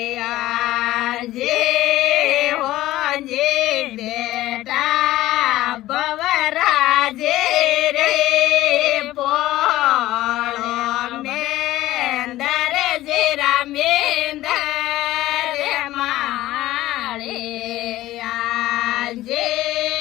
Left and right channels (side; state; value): right; quieter; 15.8 dB